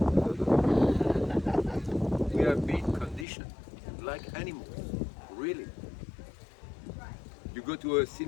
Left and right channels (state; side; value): drops out; right; at 3.2 s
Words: We have been conditioned like animals, really. You go to a